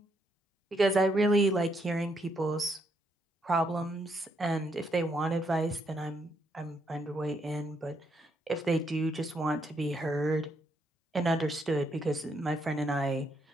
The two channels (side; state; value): both; normal; correlation 0.75